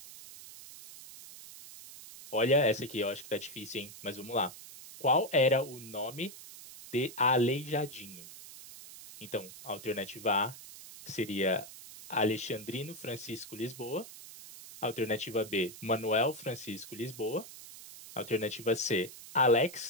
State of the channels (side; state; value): right; noise; hiss, 15 dB below the sound